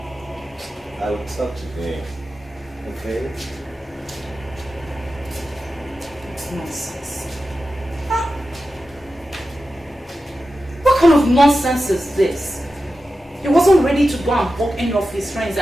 I will talk to him. Okay? this nonsense? Huh? What kind of nonsense is this? He wasn't ready to go and walk any of his friends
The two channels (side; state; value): both; normal; correlation 0.92